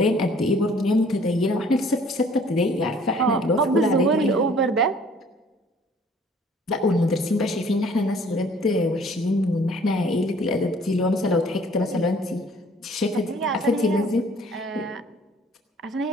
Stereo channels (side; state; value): both; normal; correlation 0.56